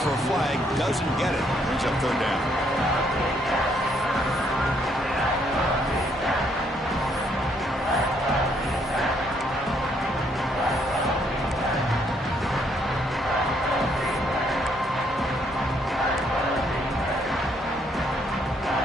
for a flag, doesn't get it. Brings up 3rd down.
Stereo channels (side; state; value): both; normal; correlation 0.70